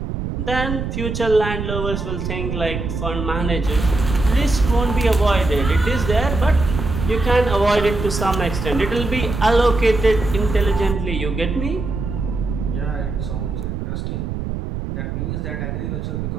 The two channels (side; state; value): right; noise; rumble, 4 dB below the sound